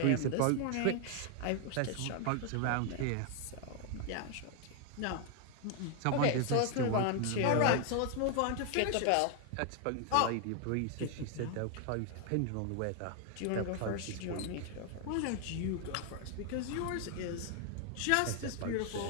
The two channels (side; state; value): both; different; correlation 0.00